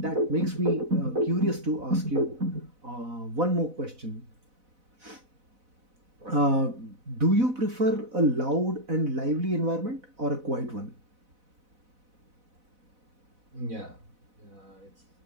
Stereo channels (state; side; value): late; left; 4.0 ms